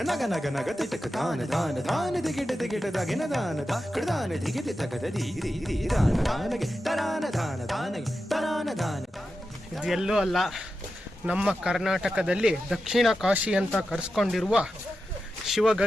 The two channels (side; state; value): both; normal; correlation 0.90